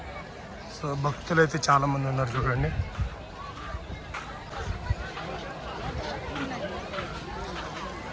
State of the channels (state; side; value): identical; both; correlation 1.00